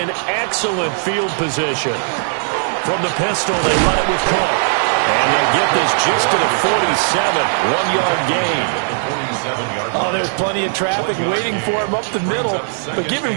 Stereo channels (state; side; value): silent; left; digital silence